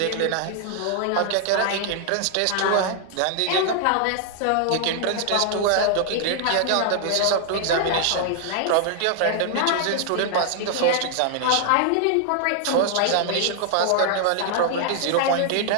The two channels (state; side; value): different; both; correlation 0.00